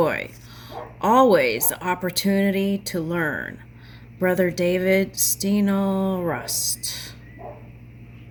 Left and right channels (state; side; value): identical; both; correlation 1.00